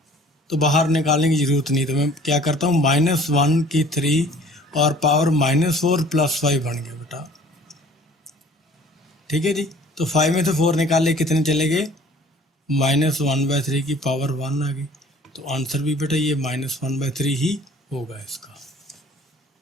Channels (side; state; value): both; normal; correlation 0.51